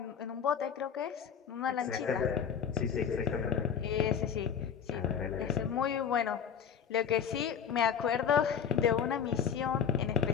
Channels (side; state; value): right; quieter; 7.7 dB